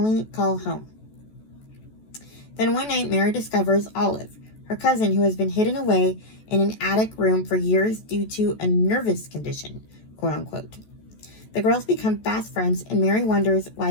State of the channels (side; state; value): right; late; 14 ms